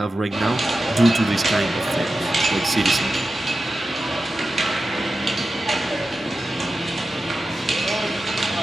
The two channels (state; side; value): normal; both; correlation 0.93